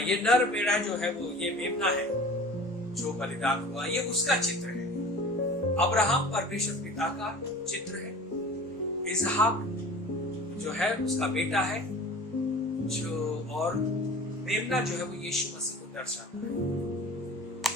नर मेढ़ा जो है वो ये मेमना है जो बलिदान हुआ, ये उसका चित्र है। अब्राहम परमेश्वर पिता का चित्र है। इसहाक जो है उसका बेटा है, जो और मेमना जो है वो यीशु मसीह को दर्शाता है।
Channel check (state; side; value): normal; both; correlation 0.41